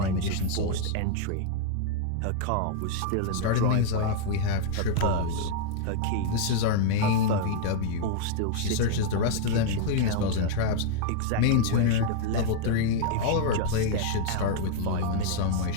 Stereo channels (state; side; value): different; both; correlation 0.00